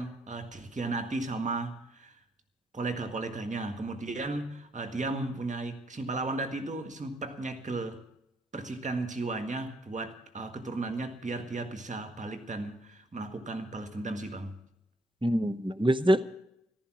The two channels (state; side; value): normal; both; correlation 0.72